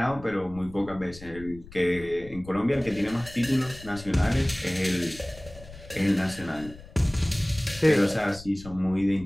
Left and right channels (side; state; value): left; noise; rumble, 18 dB below the sound